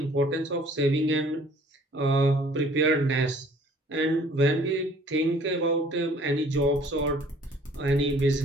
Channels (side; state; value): both; normal; correlation 0.55